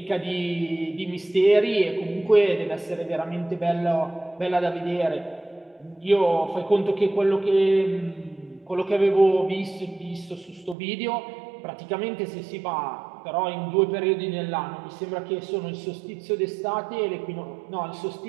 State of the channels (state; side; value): drops out; left; at 10.8 s